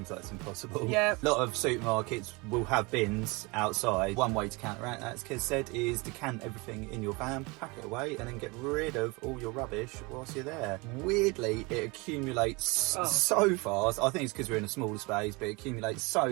like it's impossible. Yeah. A lot of supermarkets will have bins outside. One way to counteract that, as Kez said, is decant everything in your van, pack it away, and then get rid of all your rubbish whilst you're there. Weirdly, it accumulates so fast. I think it's because we're in a smaller space, but it accumulates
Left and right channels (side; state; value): left; quieter; 26.3 dB